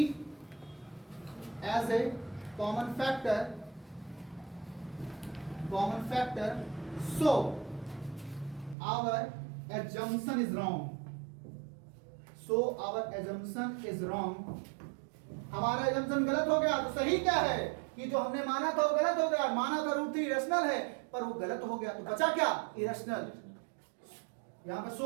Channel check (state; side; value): drops out; left; at 8.8 s